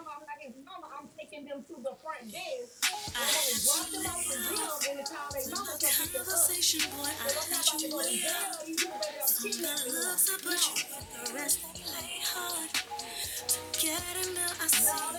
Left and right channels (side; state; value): both; identical; correlation 1.00